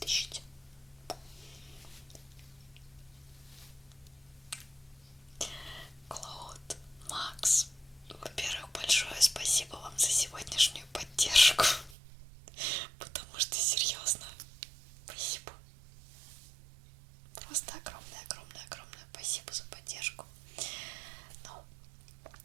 Клод, Макс, во-первых, большое спасибо вам за сегодняшнюю поддержку. Потому что, серьезно, спасибо. Просто огромное спасибо за поддержку. Ну,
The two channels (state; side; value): drops out; left; at 12.0 s